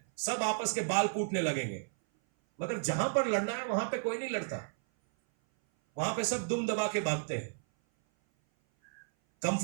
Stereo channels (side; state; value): left; silent; 56 dB below the other